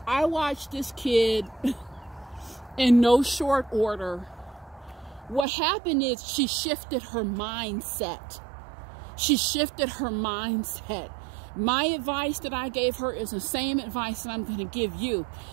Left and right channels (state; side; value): drops out; left; at 5.5 s